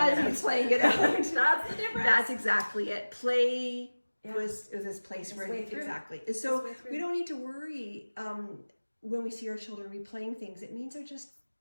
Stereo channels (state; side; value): inverted; both; correlation -1.00